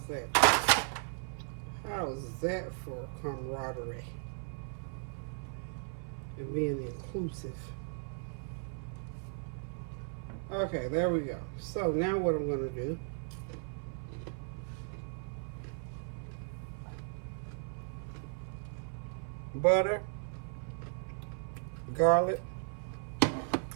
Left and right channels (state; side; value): silent; left; 54 dB below the other